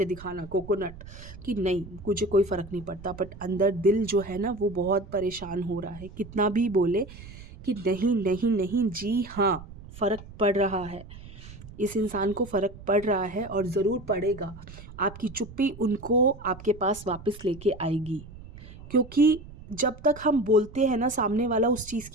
दिखाना, कोकोनट, कि नहीं मुझे कोई फ़र्क नहीं पड़ता, बट अंदर दिल जो है ना, वो बहुत परेशान हो रहा है। कितना भी बोले कि नहीं नहीं नहीं, जी हाँ, फ़र्क पड़ रहा है, इस इंसान को फ़र्क पड़ रहा है और ज़रूर पड़ेगा। आपकी चुप्पी उनको आपके पास वापस लेके आएगी, क्योंकि जब तक हम बोलते हैं ना, सामने वाला उस चीज़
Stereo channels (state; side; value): noise; right; rumble, 16 dB below the sound